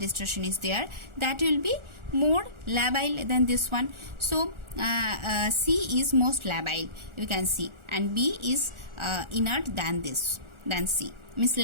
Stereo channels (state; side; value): late; left; 1.4 ms